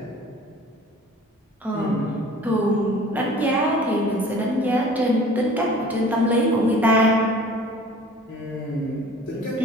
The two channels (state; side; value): normal; both; correlation 0.47